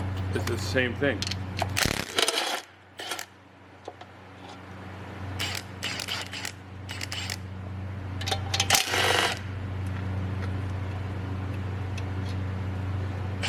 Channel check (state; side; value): identical; both; correlation 1.00